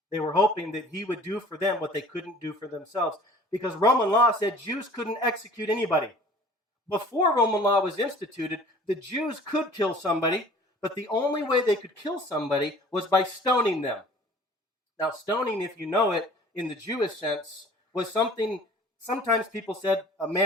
They were hoping that he would do for them what they couldn't do for themselves, because Roman law said Jews couldn't execute anybody. Before Roman law was instituted, the Jews could kill somebody, but the only way they could kill somebody was by stoning them. Now, stoning, if you know it, in the Jewish sense, was something, sometimes people said a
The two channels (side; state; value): both; normal; correlation 0.48